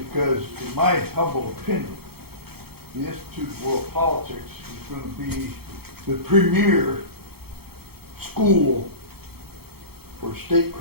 in my humble opinion, the Institute of World Politics is going to be the premier school for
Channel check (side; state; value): left; late; 0.96 ms